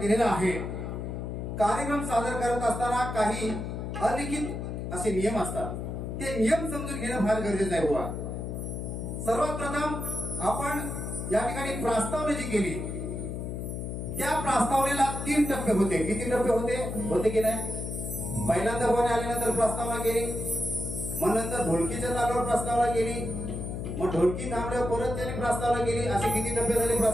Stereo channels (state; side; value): noise; left; hum, 5 dB below the sound